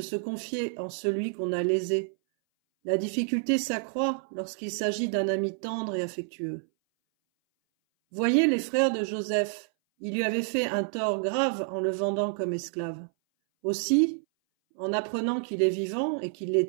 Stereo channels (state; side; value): silent; left; 58 dB below the other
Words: se confier en celui qu'on a lésé. La difficulté s'accroît lorsqu'il s'agit d'un ami tendre et affectueux. Voyez les frères de Joseph, ils lui avaient fait un tort grave en le vendant comme esclave. Aussi, en apprenant qu'il est vivant et qu'il les